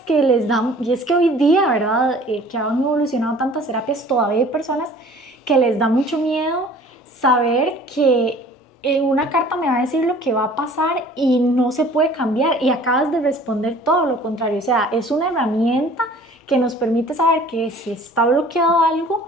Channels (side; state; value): both; normal; correlation 0.50